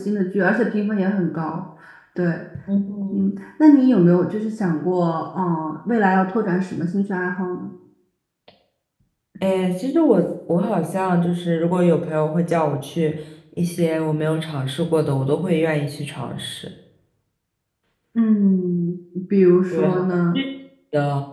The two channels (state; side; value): identical; both; correlation 1.00